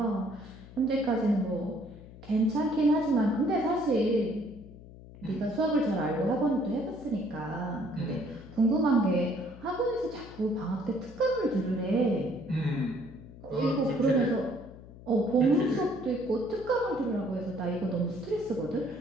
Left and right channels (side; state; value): left; noise; hum, 18 dB below the sound